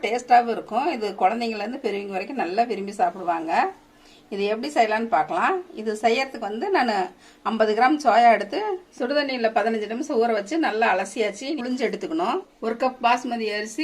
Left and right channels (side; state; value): both; identical; correlation 1.00